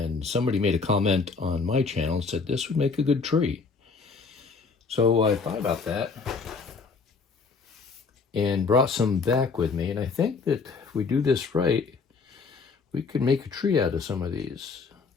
somebody made a comment on my channel and said this would make a good tree. So I thought about that and brought some back with me, and I think that if we do this right, we could make a tree out of some of these.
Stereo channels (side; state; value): right; quieter; 4.8 dB